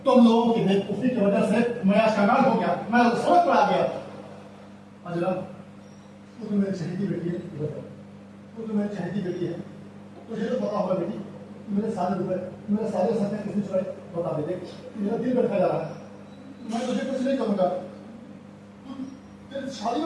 तुम लोगों की बेवकूफी की वजह से मैं आज कंगाल हो गया, मैं सड़क पर आ गया। अजला, तू तो मेरी चहेती बेटी है, तू तो मेरी चहेती बेटी है, तुझे तो पता होगा बेटी, मेरे सारे रुपए, मेरे सारे सपने किसने चुराए? बता दे, देख मेरा दिल बैठा जा रहा है। मैं तुझे कुछ नहीं करूंगा, तेरी शादी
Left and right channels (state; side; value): identical; both; correlation 1.00